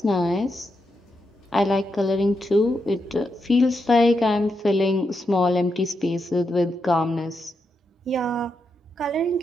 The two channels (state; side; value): normal; both; correlation 0.84